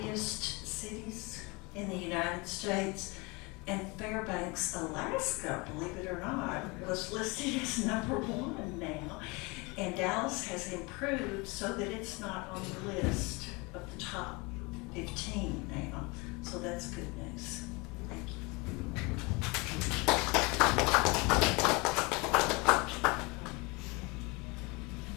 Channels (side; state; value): right; quieter; 26.9 dB